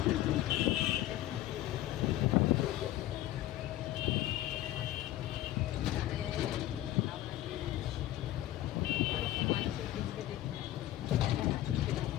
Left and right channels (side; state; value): right; quieter; 14.4 dB